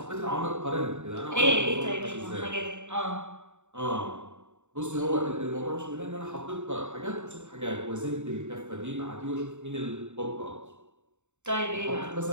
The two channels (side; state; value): left; late; 0.84 ms